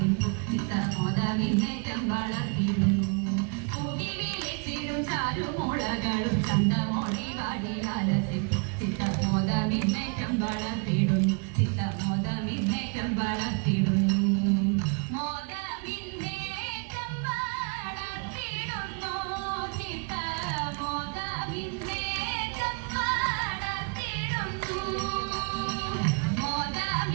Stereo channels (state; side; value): quieter; left; 34.4 dB